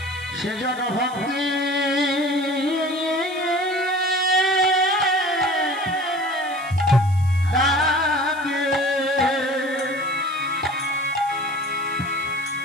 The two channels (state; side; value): noise; right; hiss, 22 dB below the sound